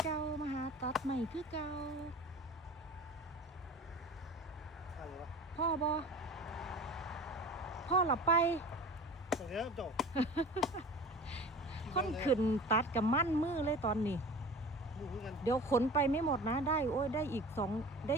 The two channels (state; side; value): normal; both; correlation 0.38